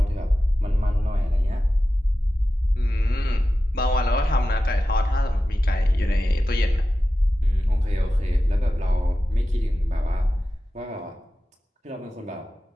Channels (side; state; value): both; normal; correlation 0.93